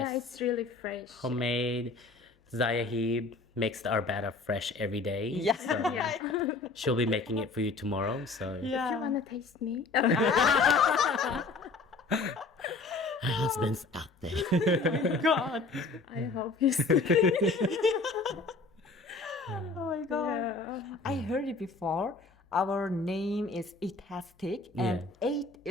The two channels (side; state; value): right; quieter; 3.7 dB